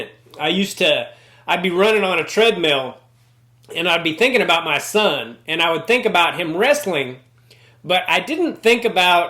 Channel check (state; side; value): identical; both; correlation 1.00